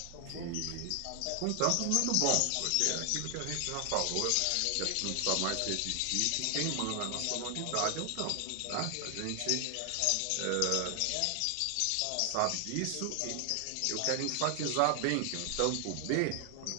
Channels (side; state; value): both; different; correlation 0.00